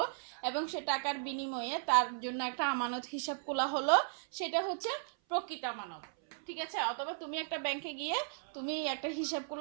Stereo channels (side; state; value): left; silent; 54 dB below the other